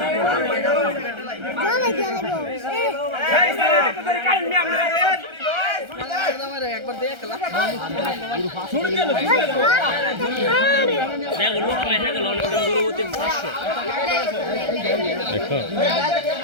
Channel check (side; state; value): left; late; 1.3 ms